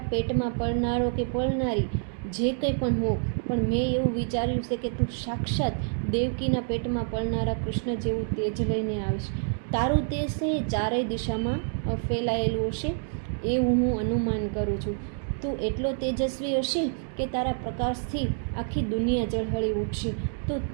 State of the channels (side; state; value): left; silent; 60 dB below the other